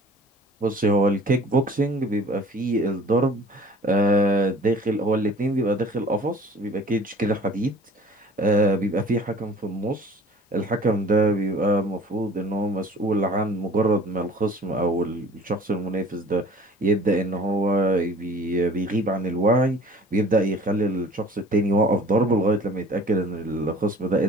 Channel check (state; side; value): normal; both; correlation 0.48